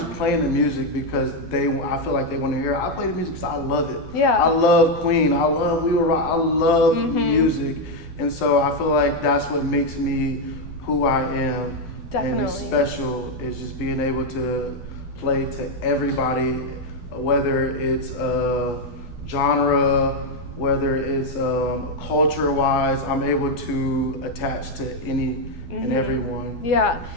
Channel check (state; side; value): late; right; 12 ms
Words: playing the music because I feel like they want to hear it. I play the music because I love it. Yeah. I love Queen. I love We Were Rock. I love music. And so I feel like that's what makes me who I am. Definitely. And special is just being able to play to everybody, whether it's genre, whether it's culture-wise, I'm able to attach to any and everyone. Yeah,